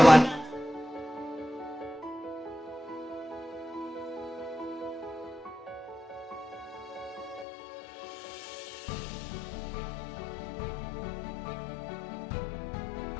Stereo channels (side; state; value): right; drops out; at 7.5 s